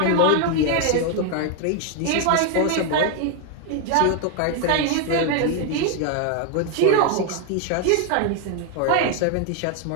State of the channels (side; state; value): both; different; correlation 0.01